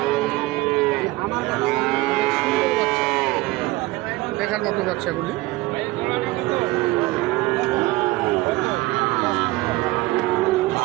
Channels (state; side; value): quieter; left; 20.0 dB